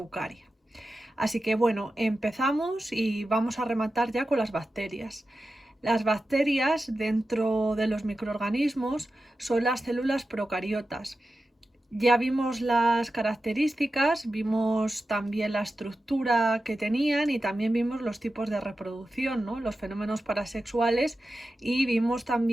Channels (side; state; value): both; normal; correlation 0.92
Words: Así que bueno, empezamos y vamos a rematar ya con las bacterias. Las bacterias dentro de los microorganismos son las células procariotas. Ya vimos las características, vimos también la estructura que tenían y también vimos los tipos de reproducción, ¿no? Los fenómenos parasexuales, y vimos